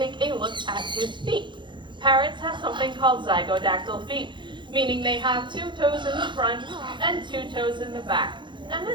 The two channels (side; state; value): left; late; 0.23 ms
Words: a look at his feet. Parrots have something called zygodactyl feet, meaning they have 2 toes in the front and 2 toes in the back. And